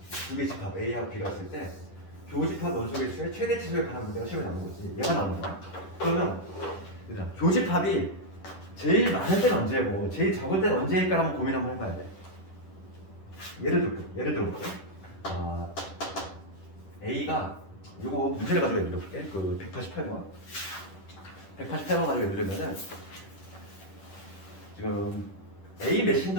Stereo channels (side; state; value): right; late; 10 ms